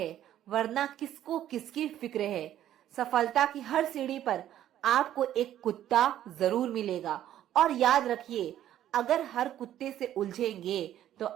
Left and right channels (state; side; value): quieter; left; 11.9 dB